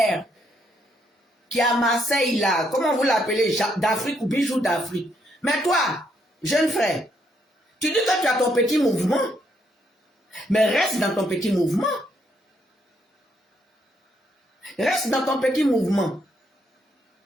qui est à Marseille, là. Comment vous l'appelez? D'Afrique ou Bijou d'Afrique. Mais toi, jeune frère, tu dis que tu as ton petit mouvement, mais reste dans ton petit mouvement. Reste dans ton petit mouvement.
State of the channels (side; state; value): both; normal; correlation 0.74